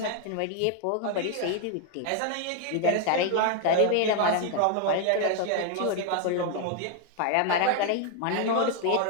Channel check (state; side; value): different; both; correlation 0.00